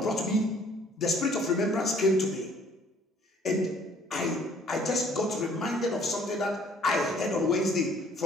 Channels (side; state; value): both; normal; correlation 0.58